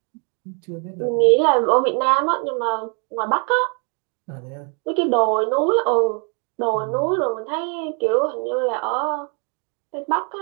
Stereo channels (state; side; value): quieter; left; 37.5 dB